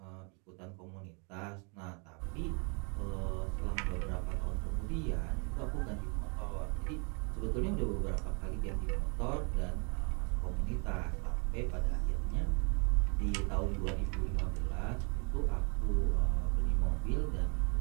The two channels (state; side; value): quieter; left; 36.3 dB